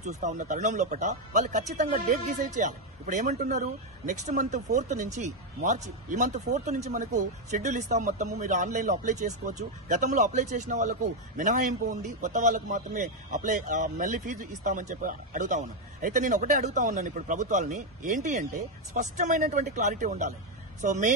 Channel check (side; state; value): both; normal; correlation 0.04